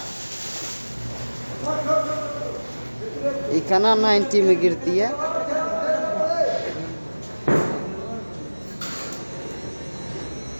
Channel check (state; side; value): inverted; both; correlation -1.00